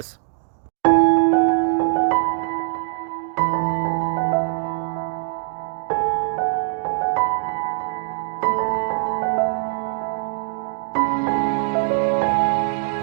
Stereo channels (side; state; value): left; silent; digital silence